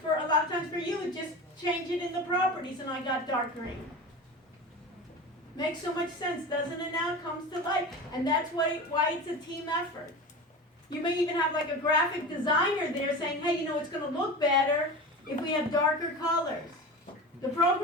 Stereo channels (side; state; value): both; normal; correlation 0.30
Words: a lot of times for you, it just change it in the properties and I got dark green. Makes so much sense, doesn't it now? It comes to life. And that's why it's a team effort. You may even have like a graphic designer there saying, hey, it's going to look better if we have darker colors. The